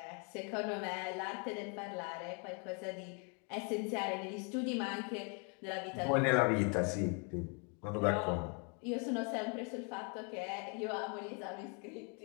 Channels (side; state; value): right; quieter; 36.7 dB